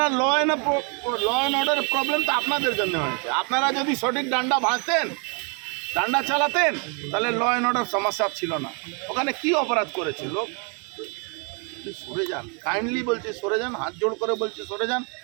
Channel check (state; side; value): quieter; left; 36.0 dB